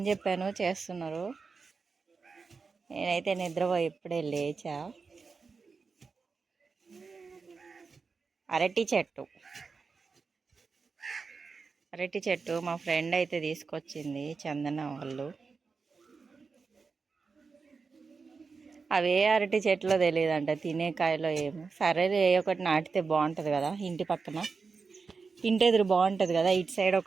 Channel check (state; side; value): quieter; left; 4.8 dB